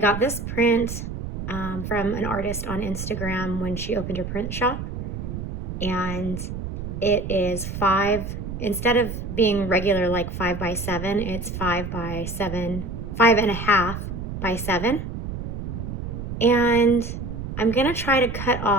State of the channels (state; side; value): noise; right; rumble, 6 dB below the sound